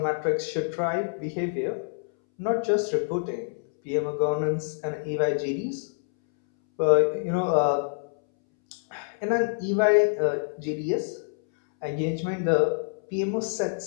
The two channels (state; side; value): silent; right; 61 dB below the other